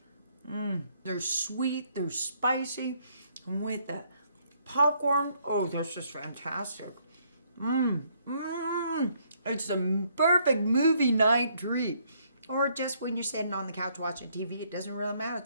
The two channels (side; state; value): both; inverted; correlation -0.69